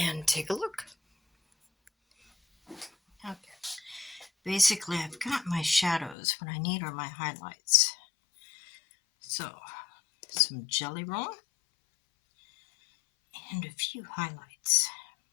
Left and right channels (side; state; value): right; drops out; at 6.2 s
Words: take a look. Okay. Basically, I've got my shadows. What I need are my highlights. So, some jelly roll and a few highlights.